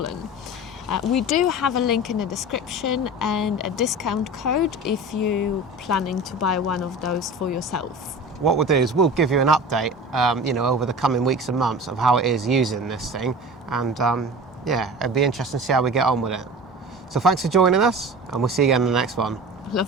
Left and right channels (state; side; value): normal; both; correlation 0.35